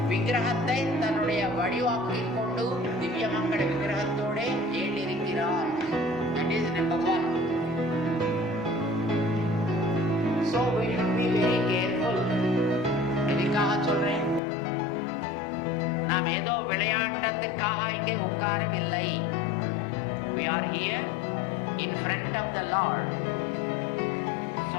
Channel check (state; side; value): drops out; right; at 14.4 s